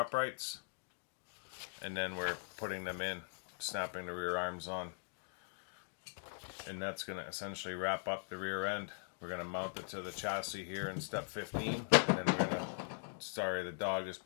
and then we're putting them in, snapping the rear arms on, and that's going to essentially wrap up the rear end. We're going to mount it to the chassis here in step 15, and then we're going to, sorry, the dog is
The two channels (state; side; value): silent; right; digital silence